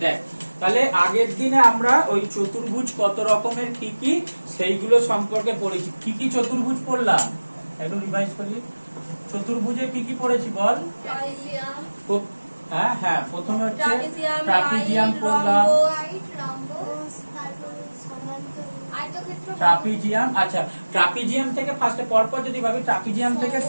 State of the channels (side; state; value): both; inverted; correlation -1.00